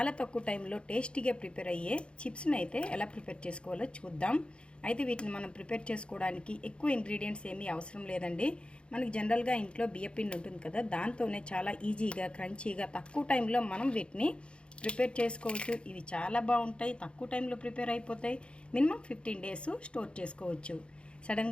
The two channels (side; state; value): right; late; 0.057 ms